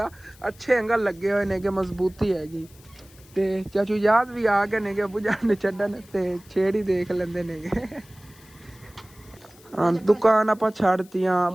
ਅੱਛੇ ਐਂਗਲ ਲੱਗੇ ਹੋਏ ਨੇ ਕਿ ਮਜ਼ਬੂਤੀ ਹੈਗੀ। ਤੇ ਚਾਚੂ ਯਾਦ ਵੀ ਆ ਗਏ ਨੇਗੇ ਅੱਬੂ ਜਾਨ ਨੇ ਛੱਡਣ, ਤੇ ਛੇੜ ਹੀ ਦੇਖ ਲੈਂਦੇ ਨੇਗੇ। ਹਾਂ ਦੁਕਾਨ ਆਪਾਂ ਛੱਡਤੀਆਂ,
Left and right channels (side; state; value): left; noise; hiss, 26 dB below the sound